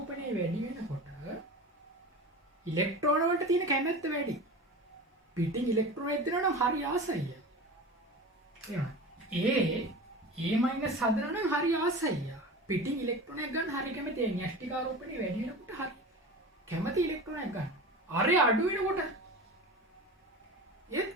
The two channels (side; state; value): both; normal; correlation 0.32